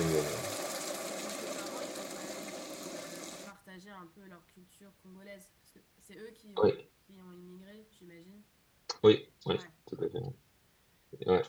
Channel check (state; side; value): identical; both; correlation 1.00